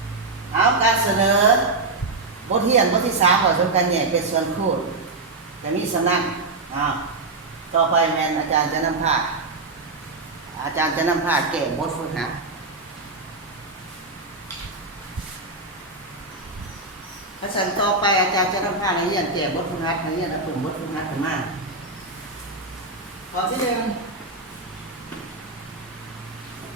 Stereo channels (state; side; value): quieter; left; 3.4 dB